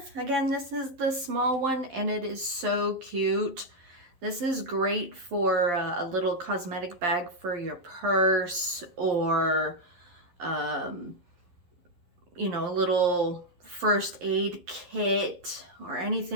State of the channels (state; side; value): late; left; 11 ms